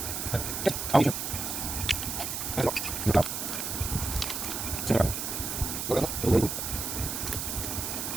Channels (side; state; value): right; noise; hiss, 3 dB below the sound